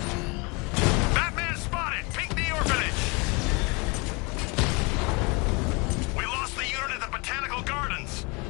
Batman spotted! Pink the orphanage! We lost the unit at the Botanical Gardens!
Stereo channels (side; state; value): right; quieter; 28.9 dB